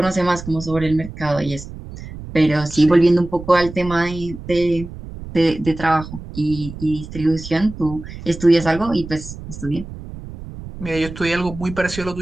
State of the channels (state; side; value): noise; right; rumble, 12 dB below the sound